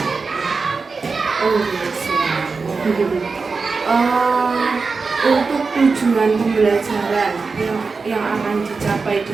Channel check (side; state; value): left; quieter; 4.5 dB